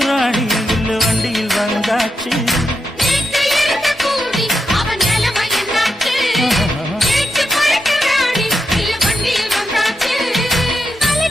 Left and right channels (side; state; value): both; normal; correlation 0.85